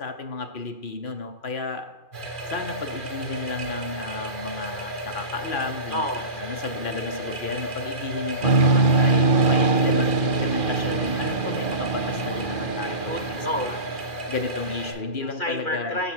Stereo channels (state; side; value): late; right; 2.4 ms